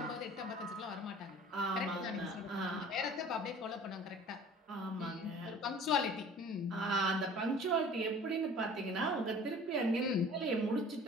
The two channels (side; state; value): both; normal; correlation 0.46